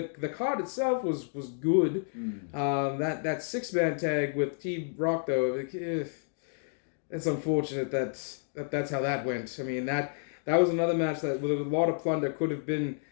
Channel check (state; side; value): silent; right; digital silence